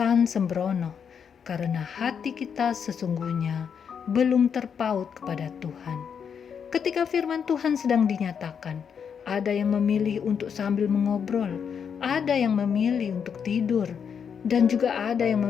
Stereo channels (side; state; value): right; quieter; 7.1 dB